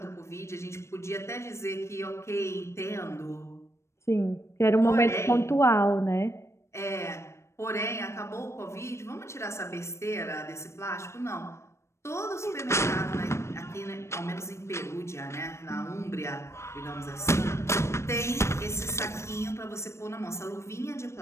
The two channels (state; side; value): late; right; 0.13 ms